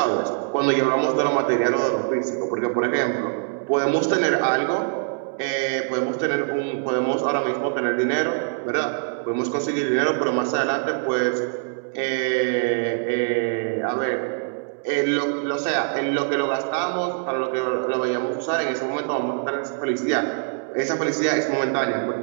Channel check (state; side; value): silent; left; digital silence